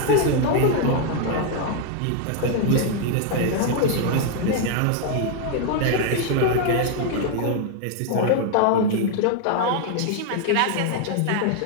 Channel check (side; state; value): both; different; correlation 0.00